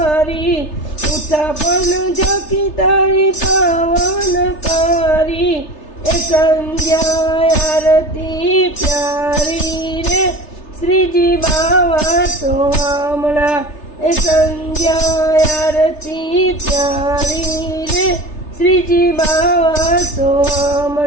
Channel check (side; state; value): right; late; 3.3 ms